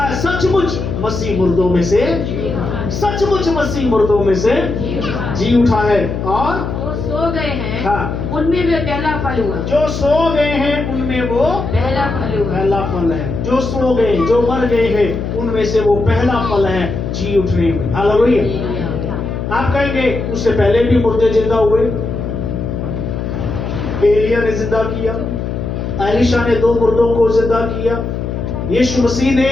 सचमुच मसीह मुर्दों में से, सचमुच मसीह मुर्दों में से जी उठा है और वो सो गए हैं, हाँ, उनमें वे पहला फल हुआ। जो सो गए हैं उनमें वो पहला फल हुआ। पहला फल है। जो सो गए, जो मर गए हैं उनमें से वो पहला फल है जी उठने में। हालेलुया। आप कहेंगे उससे पहले भी मुर्दे जिंदा हुए, एलिया ने जिंदा किया, एलीशा ने 2 मुर्दों को जिंदा किया, यीशु मसीह ने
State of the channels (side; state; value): left; noise; hum, 4 dB below the sound